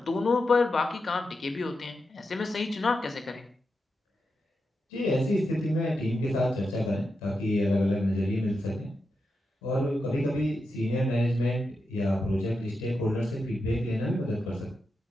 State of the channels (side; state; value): both; normal; correlation 0.88